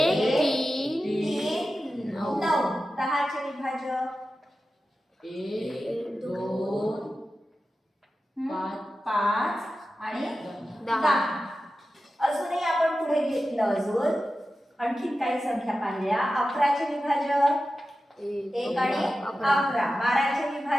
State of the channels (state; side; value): normal; both; correlation 0.93